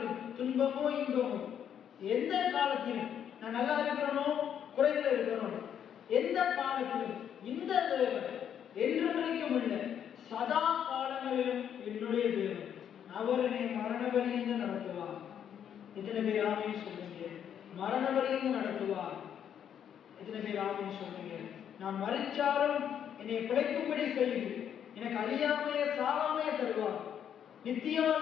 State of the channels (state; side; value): quieter; right; 9.0 dB